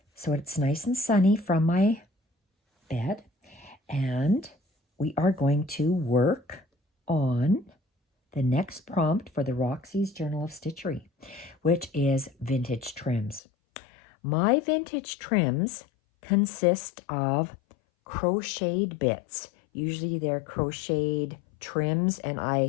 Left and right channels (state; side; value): drops out; right; at 13.4 s